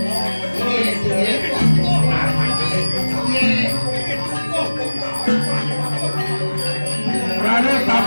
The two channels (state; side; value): inverted; both; correlation -1.00